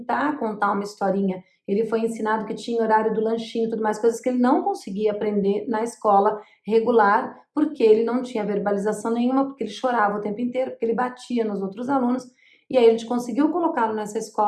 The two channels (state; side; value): identical; both; correlation 1.00